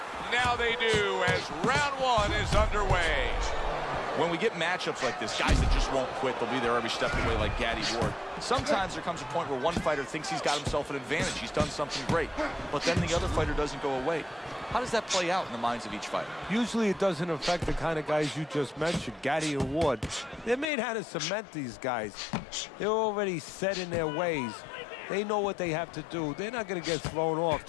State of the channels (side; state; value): right; drops out; at 20.7 s